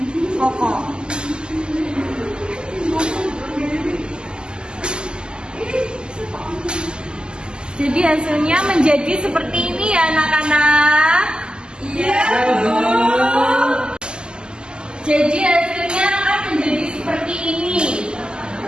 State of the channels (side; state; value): left; late; 0.047 ms